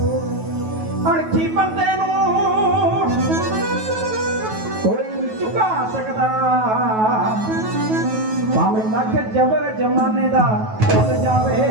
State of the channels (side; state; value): left; late; 9.3 ms